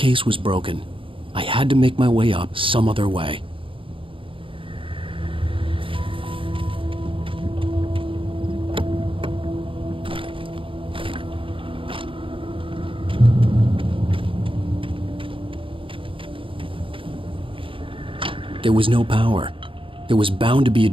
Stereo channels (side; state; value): left; late; 0.25 ms